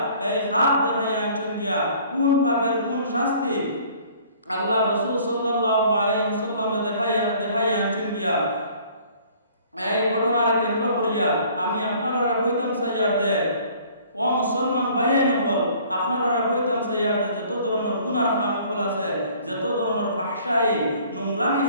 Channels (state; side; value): inverted; both; correlation -0.54